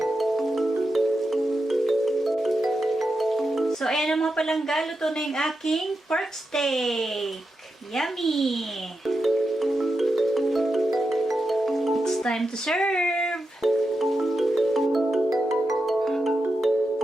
So, ayan ang mga palangga. Luto na yung aking pork steak. Yummy! It's time to serve!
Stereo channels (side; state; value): both; normal; correlation 0.88